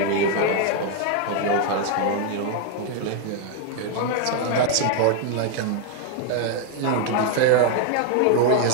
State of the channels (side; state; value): both; different; correlation 0.00